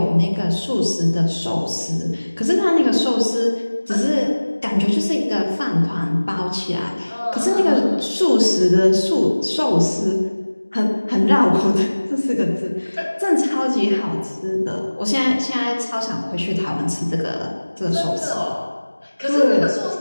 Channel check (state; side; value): inverted; both; correlation -1.00